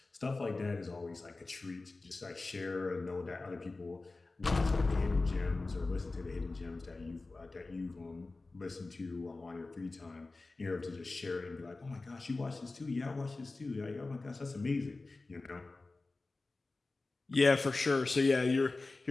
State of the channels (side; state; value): right; quieter; 3.4 dB